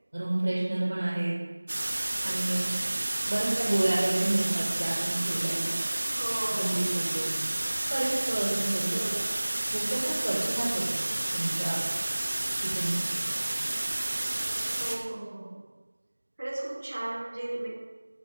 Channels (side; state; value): both; inverted; correlation -1.00